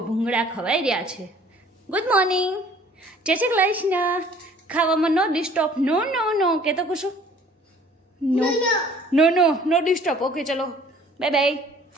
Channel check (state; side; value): normal; both; correlation 0.53